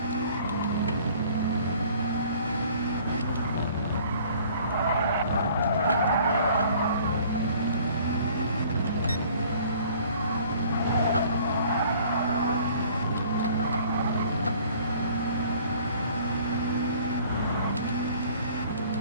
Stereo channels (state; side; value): inverted; both; correlation -0.54